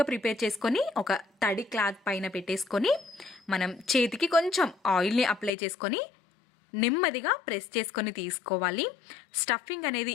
ప్రిపేర్ చేసుకొని ఒక తడి క్లాత్ పైన పెట్టేసుకొని మనం చేతికి కొంచెం ఆయిల్ని అప్లై చేసుకొని నెమ్మదిగా ప్రెస్ చేసుకొని తీసుకోవాలి. స్టఫింగ్ అనేది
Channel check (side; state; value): right; drops out; at 5.5 s